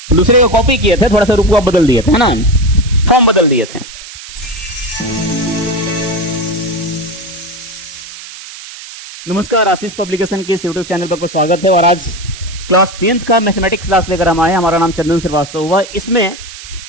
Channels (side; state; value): right; noise; hiss, 14 dB below the sound